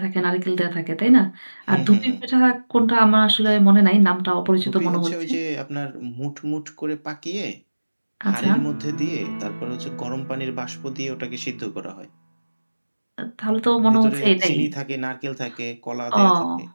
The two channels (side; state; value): both; inverted; correlation -1.00